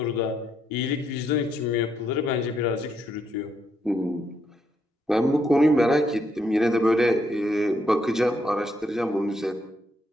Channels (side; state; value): both; normal; correlation 0.76